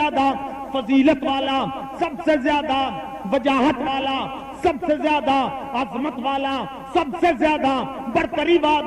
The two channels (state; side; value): identical; both; correlation 1.00